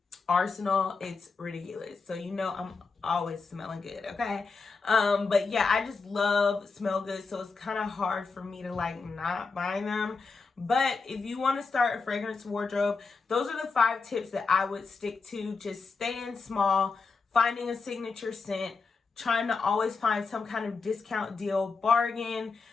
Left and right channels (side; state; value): right; quieter; 4.5 dB